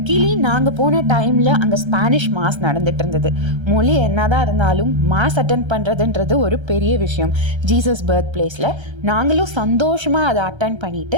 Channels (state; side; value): late; left; 1.3 ms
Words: கீழே நாங்கள் போன டைமில் அங்கே ஸ்பானிஷ் மாஸ் நடந்துட்டு இருந்தது. மொழி என்னதான் இருந்தாலும் மாஸ் அட்டன் பண்ணுறதுன்றது ஒரு பெரிய விஷயம். ஜீசஸ் பர்த் பிளேஸில் நாங்களும் சந்தோஷமாக அதை அட்டன்